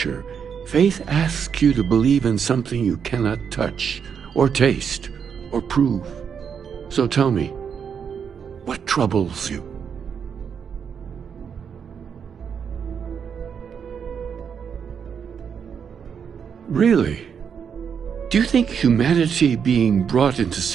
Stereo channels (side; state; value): left; quieter; 7.1 dB